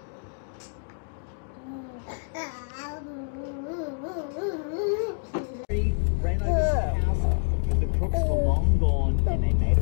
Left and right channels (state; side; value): silent; right; 60 dB below the other